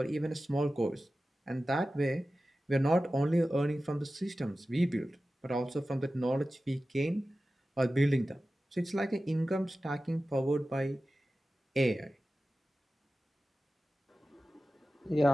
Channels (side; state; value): both; normal; correlation 0.95